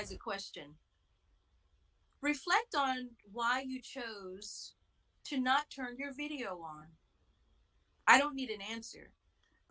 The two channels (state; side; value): identical; both; correlation 1.00